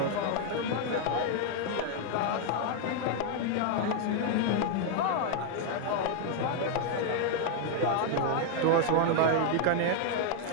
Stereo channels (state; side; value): different; both; correlation 0.00